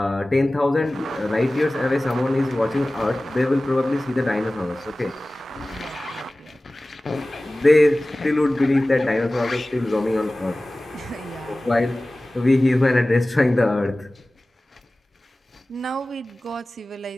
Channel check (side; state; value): both; normal; correlation 0.97